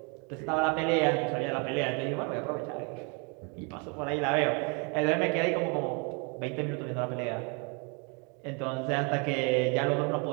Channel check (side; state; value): left; quieter; 34.0 dB